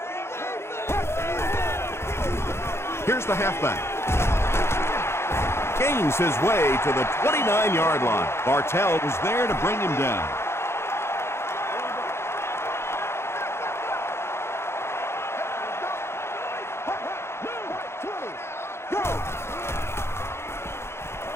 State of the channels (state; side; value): late; right; 0.12 ms